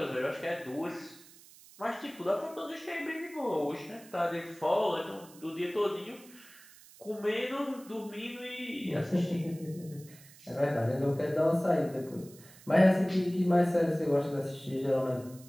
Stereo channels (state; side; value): noise; right; hiss, 22 dB below the sound